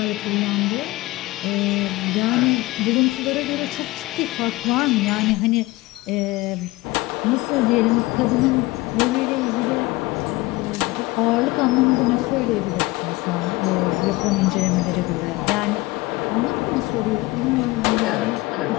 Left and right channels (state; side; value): quieter; right; 20.4 dB